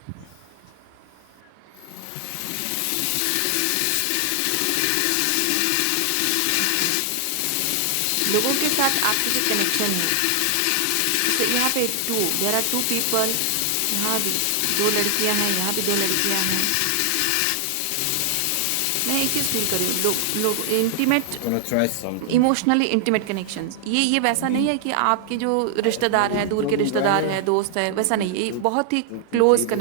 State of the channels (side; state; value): both; different; correlation 0.00